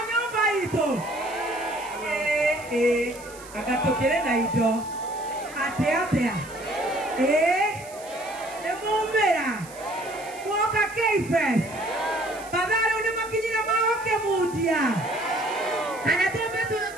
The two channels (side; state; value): right; noise; hiss, 19 dB below the sound